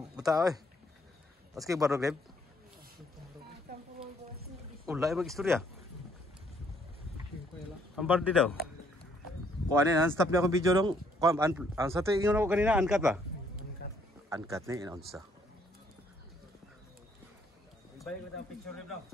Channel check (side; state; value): both; normal; correlation 0.67